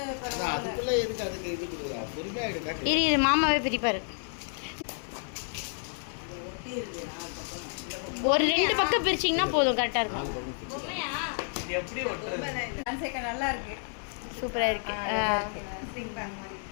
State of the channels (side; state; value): right; silent; 58 dB below the other